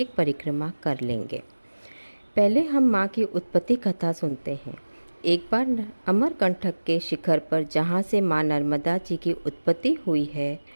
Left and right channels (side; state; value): both; inverted; correlation -1.00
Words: परिक्रमा कर लेंगे। पहले हम माँ की उत्पत्ति कथा सुनते हैं। एक बार अमरकंटक के शिखर पर जहाँ से माँ नर्मदा जी की उत्पत्ति हुई है,